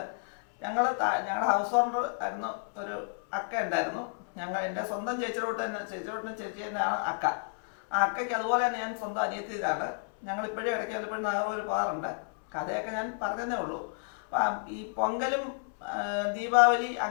ഞങ്ങളുടെ ഹൗസ് ഓണർ ആയിരുന്നു ഒരു അക്ക ഉണ്ടായിരുന്നു. എൻ്റെ സ്വന്തം ചേച്ചിയോട്ടും ചേച്ചി തന്നെയാണ് അക്ക. ആ അക്കയ്ക്ക് അതുപോലെ തന്നെ ഞാൻ സ്വന്തം അനിയത്തിയിലാണ്. ഞങ്ങളിപ്പോഴും ഇടയ്ക്ക് വല്ലപ്പോഴും നാഗർകോവിൽ പോകാറുണ്ട്. കഥയൊക്കെ ഞാൻ പറഞ്ഞതേ ഉള്ളൂ. ഈ പൊങ്കലും ദീപാവലി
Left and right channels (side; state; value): right; silent; 57 dB below the other